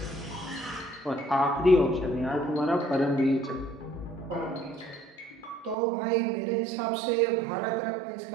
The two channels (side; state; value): left; drops out; at 5.8 s